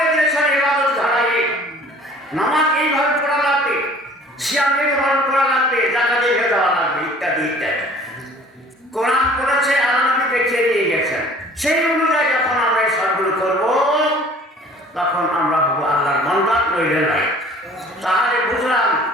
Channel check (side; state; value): both; normal; correlation 0.50